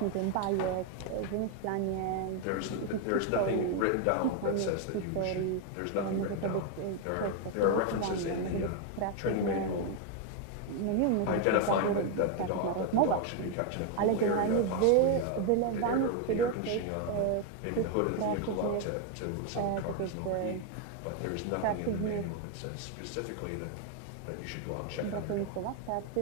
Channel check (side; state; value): both; different; correlation 0.01